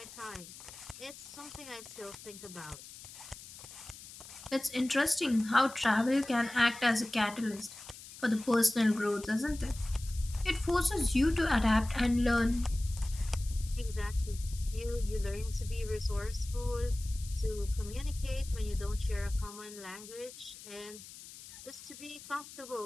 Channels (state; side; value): noise; left; hiss, 16 dB below the sound